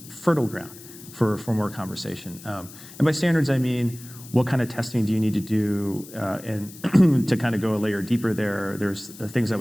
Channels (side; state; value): left; noise; hiss, 18 dB below the sound